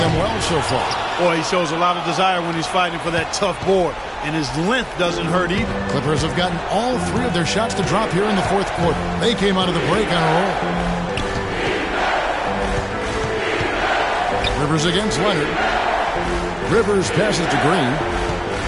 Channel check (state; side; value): identical; both; correlation 1.00